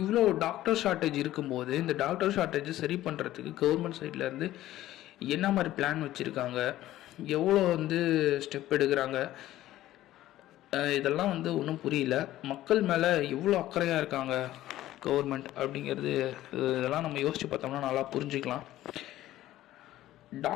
இவ்வளோ டாக்டர் ஷார்ட்டேஜ் இருக்கும்போது இந்த டாக்டர் ஷார்ட்டேஜை சரி பண்ணுறதுக்கு கவர்மெண்ட் சைட்லேருந்து என்ன மாதிரி பிளான் வச்சுருக்காங்க, எவ்வளோ வந்து ஸ்டெப் எடுக்கிறாங்க, இதெல்லாம் வந்து ஒன்றும் புரியல. மக்கள் மேலே எவ்வளோ அக்கறையாக இருக்காங்க கவர்மெண்ட் அப்படிங்கிறது, இதெல்லாம் நம்ம யோசித்து பார்த்தோம்னா நல்லா புரிஞ்சுக்கலாம்.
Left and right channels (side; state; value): right; quieter; 14.5 dB